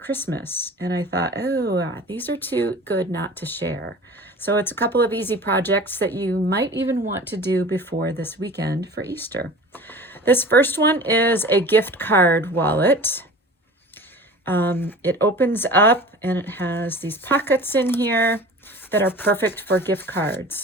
And I thought, these are too good not to share. So it's a couple of easy projects that you might even want to do before this weekend for Easter. This first one is a gift card wallet. It opens up and it has these pockets in here that are perfect for gift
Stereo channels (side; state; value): both; normal; correlation 0.39